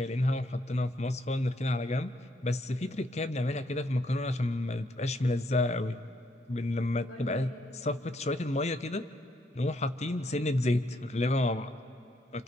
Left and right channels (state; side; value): normal; both; correlation 0.73